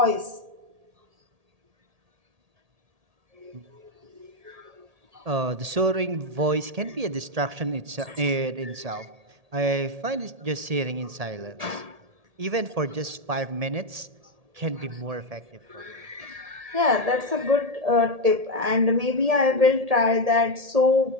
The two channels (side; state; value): left; late; 1.8 ms